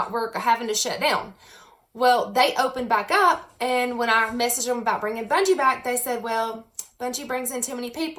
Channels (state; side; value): identical; both; correlation 1.00